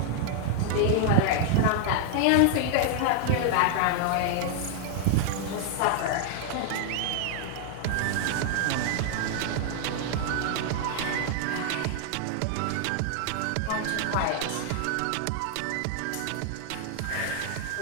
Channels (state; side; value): different; both; correlation 0.00